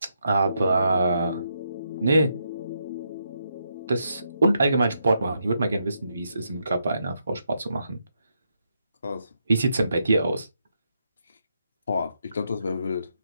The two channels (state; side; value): inverted; both; correlation -0.80